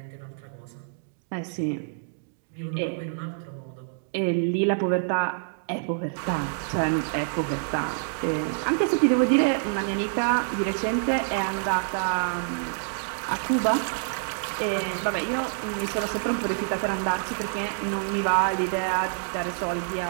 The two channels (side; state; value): left; silent; digital silence